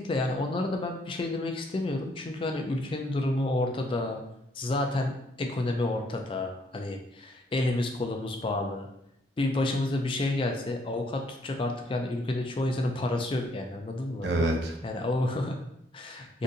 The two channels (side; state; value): both; normal; correlation 0.68